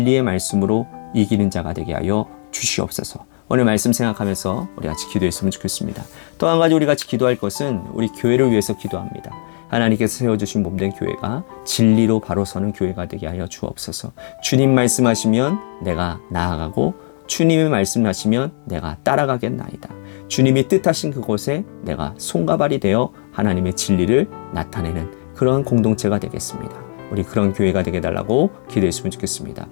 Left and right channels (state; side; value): silent; right; digital silence